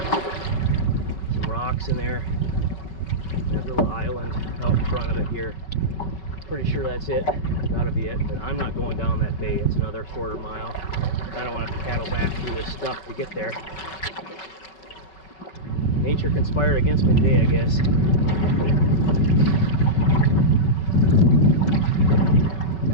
Some rocks in there. And that little island out in front of it here. Pretty sure that's it. Gotta be it. But I'm not going down that bay. It's another quarter mile. I don't want to paddle back through this stuff to get there. Nature conspired against me today, I guess.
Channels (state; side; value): late; right; 5.3 ms